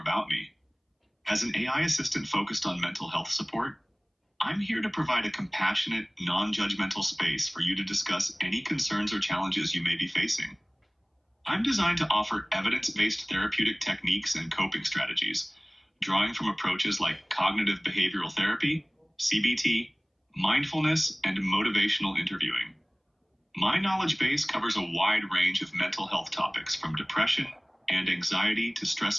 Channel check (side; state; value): both; identical; correlation 1.00